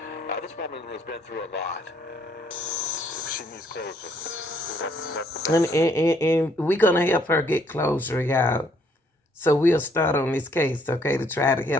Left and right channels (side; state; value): both; normal; correlation 0.67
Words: This woman has been through a lot. She needs closure. That's And we're going to help her get closure, y'all. So we'll start on this case, okay, to try to